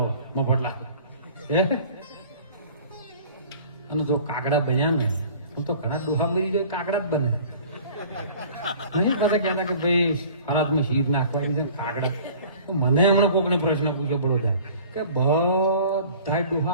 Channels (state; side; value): inverted; both; correlation -0.47